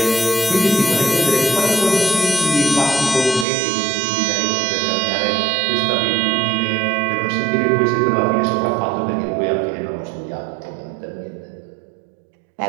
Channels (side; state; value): left; drops out; at 3.5 s